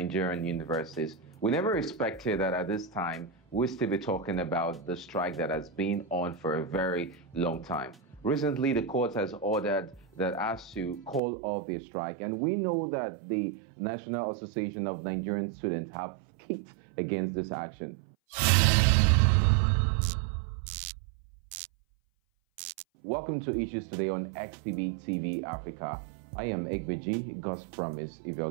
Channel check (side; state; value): left; drops out; at 11.2 s